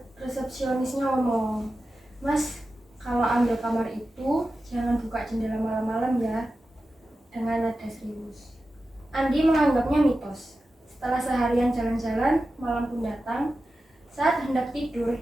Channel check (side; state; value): both; normal; correlation 0.93